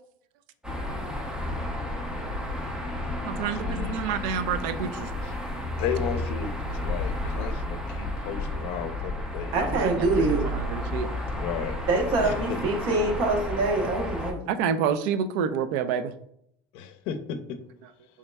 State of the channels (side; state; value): both; normal; correlation 0.31